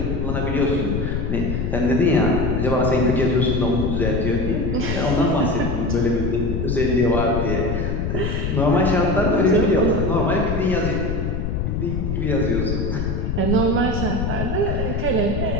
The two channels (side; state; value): left; noise; rumble, 1 dB below the sound